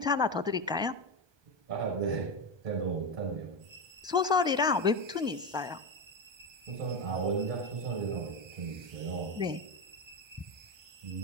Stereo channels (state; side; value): late; left; 1.2 ms